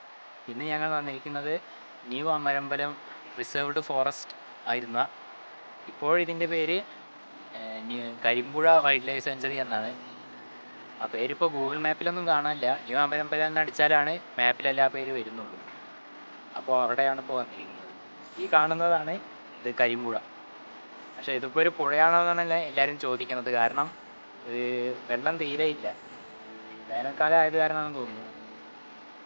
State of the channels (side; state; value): both; inverted; correlation -1.00